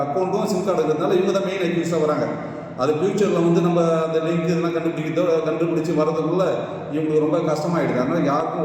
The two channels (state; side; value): identical; both; correlation 1.00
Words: அக்கௌண்ட்டும் சிம் கார்டு இருக்கிறதுனால இவங்க தான் மெயின் அக்யூஸாக வராங்க. அது ஃப்யூச்சரில் நம்ம அந்த லிங்க் இதெல்லாம் கண்டுபிடிச்சி வரதுக்குள்ளே இவங்களுக்கு ரொம்ப கஷ்டமாகிடுது. அதனால்